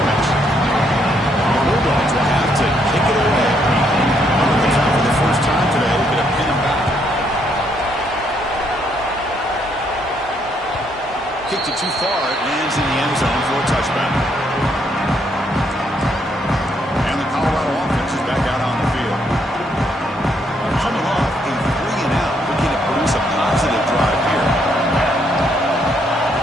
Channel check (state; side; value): normal; both; correlation 0.72